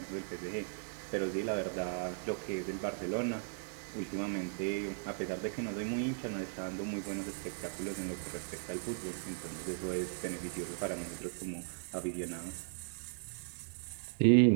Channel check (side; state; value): left; silent; digital silence